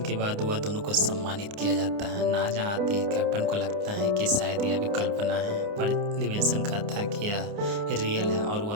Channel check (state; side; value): late; left; 29 ms